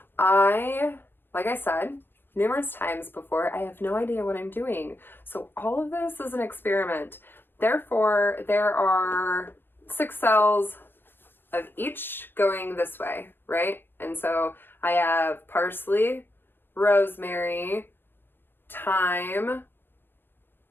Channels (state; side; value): late; right; 0.10 ms